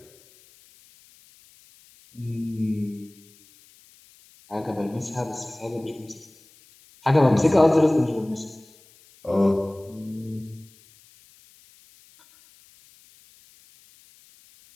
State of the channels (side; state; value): left; noise; hiss, 28 dB below the sound